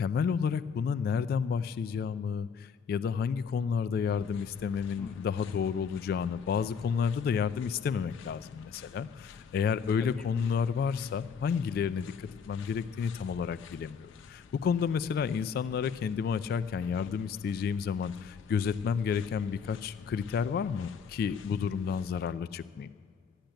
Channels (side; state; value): right; quieter; 6.3 dB